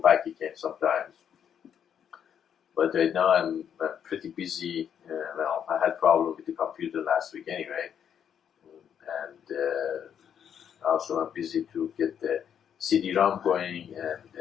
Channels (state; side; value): quieter; right; 8.6 dB